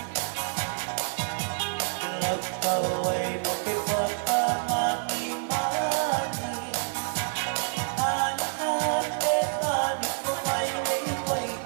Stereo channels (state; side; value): silent; left; digital silence